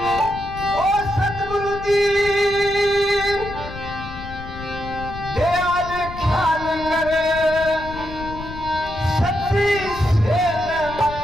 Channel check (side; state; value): left; noise; rumble, 12 dB below the sound